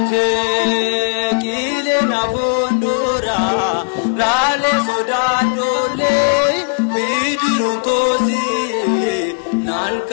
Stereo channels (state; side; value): silent; right; 63 dB below the other